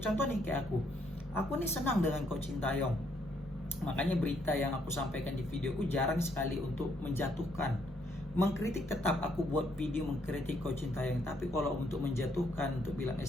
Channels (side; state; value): both; normal; correlation 0.71